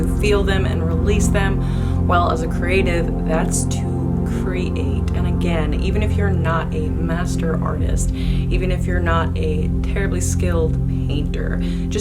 feel them and release them? Well, as a creative, that's to create. And again, even if you're not a master artist, even if you're not a terribly skilled painter,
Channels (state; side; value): identical; both; correlation 1.00